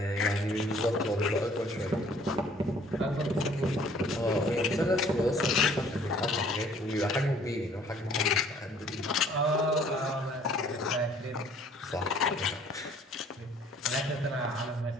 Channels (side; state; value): both; normal; correlation 0.57